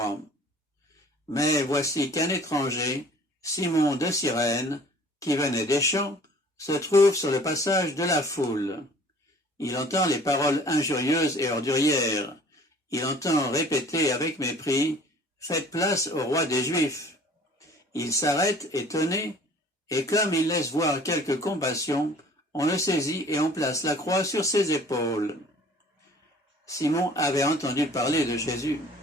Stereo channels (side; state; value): both; normal; correlation 0.50